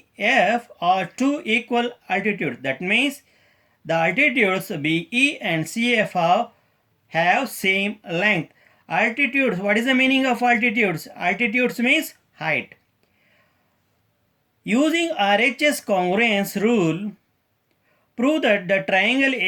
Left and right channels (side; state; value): both; identical; correlation 1.00